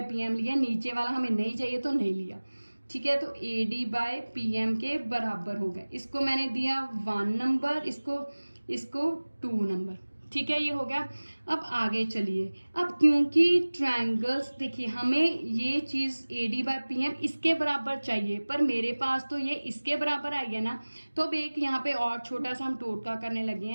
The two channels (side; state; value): both; inverted; correlation -1.00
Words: PM लिया, नीचे वाला हमें नहीं चाहिए तो नहीं लिया, ठीक है। तो AD बाय PM के बराबर हो गए। इसको मैंने दिया 1 नंबर, इसको 2 नंबर, ठीक है। ये हो गया। अब आगे चलिए। अब क्योंकि ट्रायंगल्स, देखिए हमें ये चीज AD बाय PM इसके बराबर चाहिए, पर मेरे पास तो ये इसके बराबर आई है ना, तो अब एक यहाँ पे और छोटा सा हम टोटका करने लगे